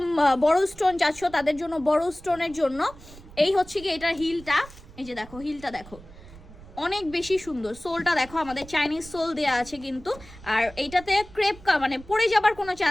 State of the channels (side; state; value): right; noise; rumble, 19 dB below the sound